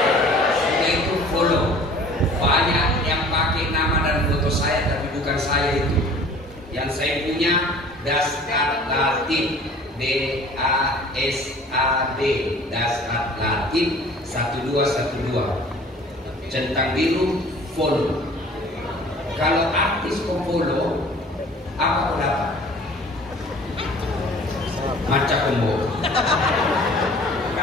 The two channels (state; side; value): normal; both; correlation 0.48